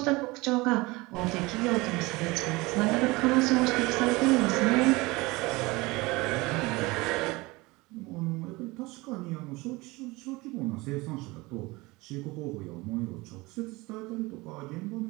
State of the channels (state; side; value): quieter; left; 22.8 dB